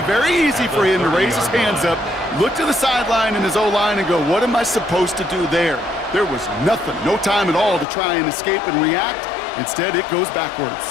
very easy for him to raise his hands up, look to the sideline in his O-line and go, what am I supposed to do there? There was nothing, no time at all to try and escape and react. Instead, it goes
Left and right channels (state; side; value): drops out; right; at 7.9 s